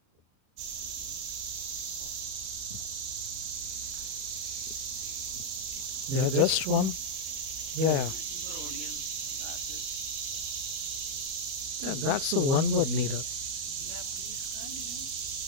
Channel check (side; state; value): left; late; 38 ms